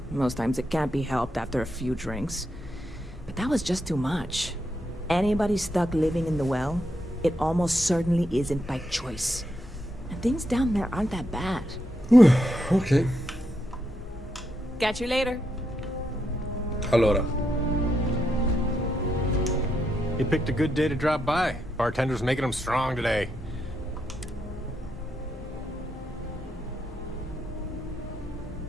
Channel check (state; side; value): normal; both; correlation 0.82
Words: Most times it can't be helped after a few drinks. But that was just too much. Anybody stuck living in the well, it almost certainly isn't by choice. And things down there aren't that bad. Ok. Catch you later. Allora. You picked a good day to drop by. Bartender's making them strong today.